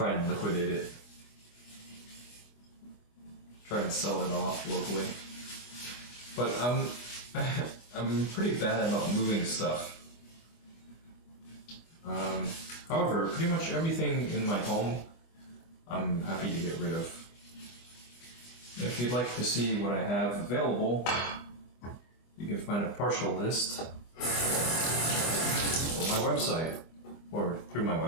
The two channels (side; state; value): right; late; 25 ms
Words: and liquidate it. Try and sell it off locally. But I'm pretty bad about moving stuff. However, pretty much everything in my home I'm happy to get rid of. If you'd like to see what I have available, you can find a partial list on my website, or through my